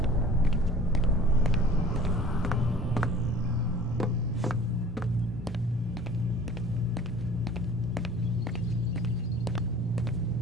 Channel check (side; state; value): both; normal; correlation 0.46